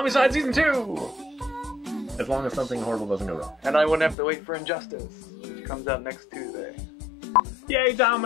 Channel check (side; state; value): right; drops out; at 4.2 s